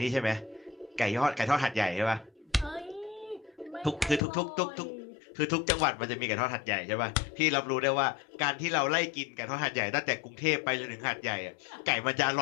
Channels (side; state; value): right; drops out; at 4.2 s